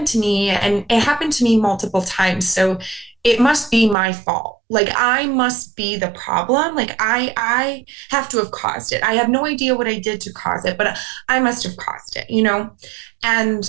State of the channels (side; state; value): left; drops out; at 4.0 s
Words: to me and it happened to me multiple times, so it must be my fault. Like I must be the problem. Like I have to have caused it. I have no idea what I did to cause it, but I must have caused it, you know?